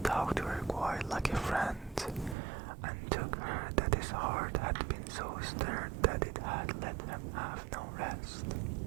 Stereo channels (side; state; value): left; drops out; at 2.4 s